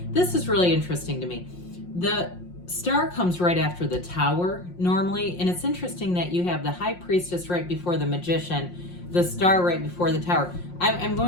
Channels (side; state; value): right; late; 5.6 ms